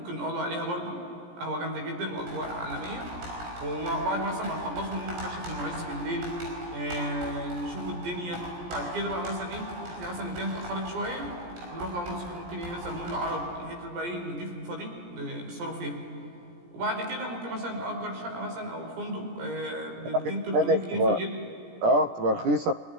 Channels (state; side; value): late; left; 17 ms